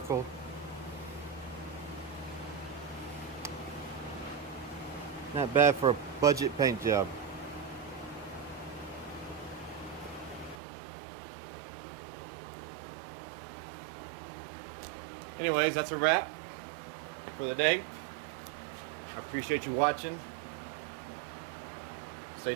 Not bad for a budget paint job. Anyways, that's a wrap for the day. I appreciate you watching. Stay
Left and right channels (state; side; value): drops out; left; at 10.6 s